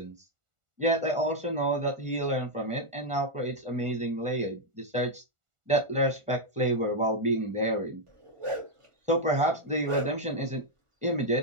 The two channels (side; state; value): left; late; 1.4 ms